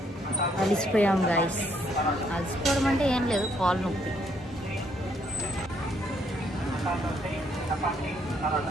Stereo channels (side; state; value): both; normal; correlation 0.70